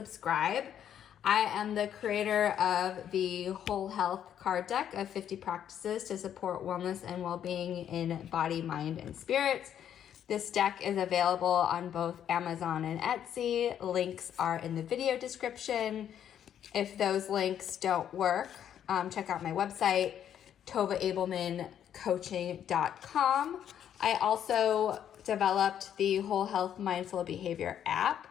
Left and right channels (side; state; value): right; quieter; 9.7 dB